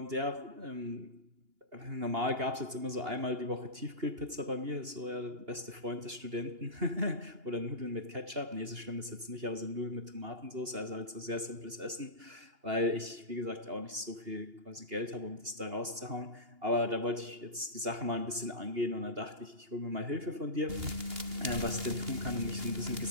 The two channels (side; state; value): left; late; 2.8 ms